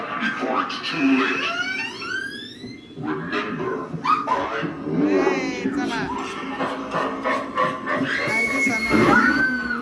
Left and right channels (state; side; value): identical; both; correlation 1.00